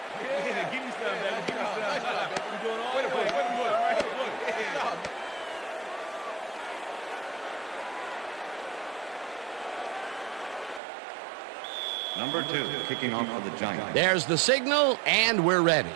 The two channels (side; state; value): left; drops out; at 10.8 s